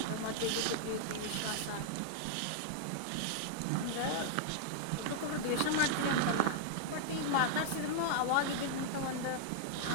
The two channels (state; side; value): different; both; correlation -0.01